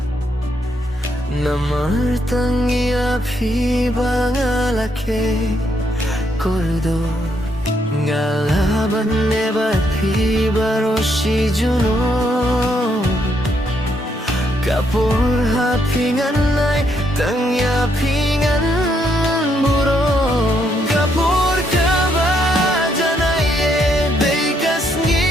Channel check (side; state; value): both; normal; correlation 0.74